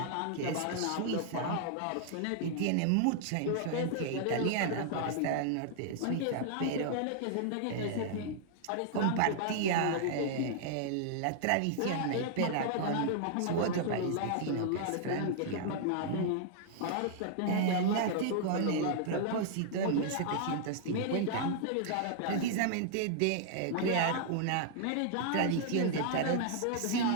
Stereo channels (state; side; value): different; both; correlation -0.01